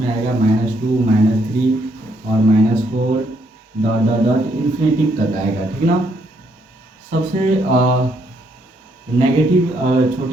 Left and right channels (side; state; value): both; normal; correlation 0.72